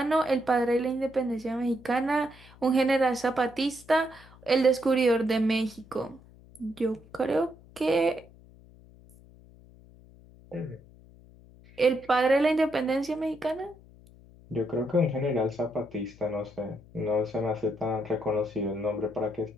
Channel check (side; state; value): left; noise; hum, 23 dB below the sound